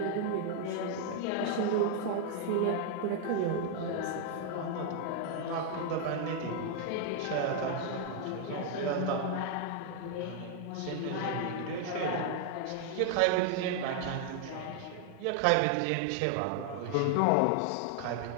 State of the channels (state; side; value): different; both; correlation 0.00